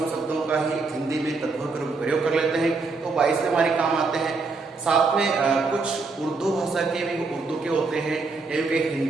शब्दों का ही हिंदी में तद्भव रूप प्रयोग कर लेते हैं, तो 22 हमारे काम आते हैं। साथ में कुछ उर्दू भाषा के भी, उर्दू के होते हैं या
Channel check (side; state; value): left; quieter; 4.0 dB